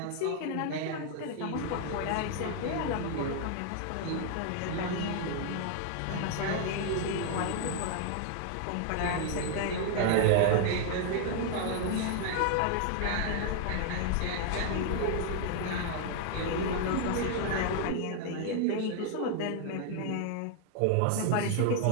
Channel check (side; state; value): both; different; correlation 0.00